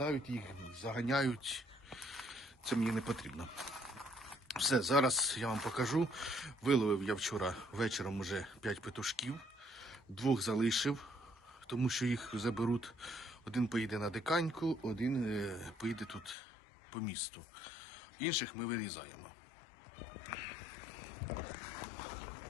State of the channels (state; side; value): drops out; right; at 16.4 s